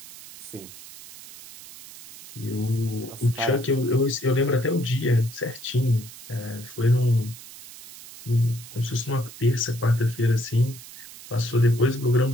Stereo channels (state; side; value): noise; right; hiss, 16 dB below the sound